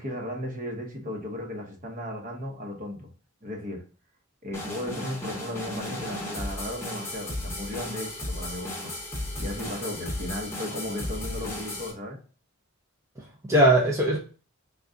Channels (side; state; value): both; normal; correlation 0.24